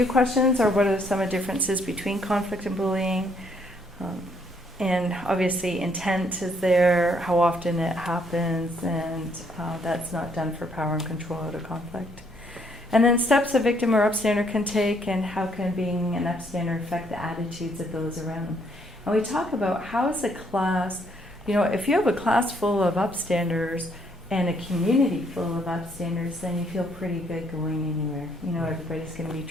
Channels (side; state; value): both; normal; correlation 0.69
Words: questions are, what are some of the differences between conflict and bullying? And obviously intent is there, how often it happens, and that's not done for power and control out of conflict. And then steps a victim or upstander can take, and how can being an upstander affect the attitudes of those around them. And we talk about how is a class, you know, if you have a class full of upstanders and a community full of upstanders, then you feel pretty good going anywhere. You know, everybody's going to be